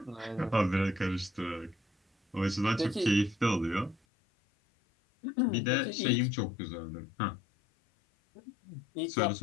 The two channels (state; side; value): drops out; right; at 4.0 s